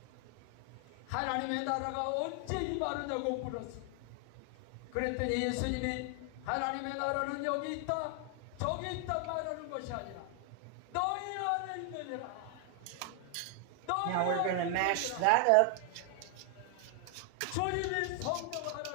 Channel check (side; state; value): both; different; correlation 0.00